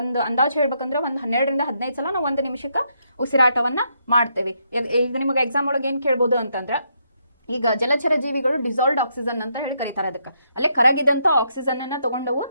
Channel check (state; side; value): inverted; both; correlation -0.77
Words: ಒಂದು ಅಂದಾಜು ಹೇಳ್ಬೇಕಂದ್ರೆ ಒಂದು 12-15 ಸಲ ನಾವು 1 ನಿಮಿಷಕ್ಕೆ ಉಸಿರಾಟವನ್ನ ಮಾಡ್ತೇವೆ. ಈಗ ನಿಮಗೆ ಎಕ್ಸಾಮ್ ಒಳಗೆ ಏನ್ ಕೇಳ್ಬೋದು ಅಂತಂದ್ರೆ, ಈಗ ಜಲಚರ ಜೀವಿಗಳು ಡಿಸಾಲ್ವ್ಡ್ ಆಕ್ಸಿಜನ್ ಅಂತ ಹೇಳಿ ಕರೀತಾರೆ. ಅದಕ್ಕೆ ಅಲ್ಲೇ ಕರಗಿದಂತ ಆಕ್ಸಿಜನ್ ಅನ್ನ ತಗೊಂಡವು,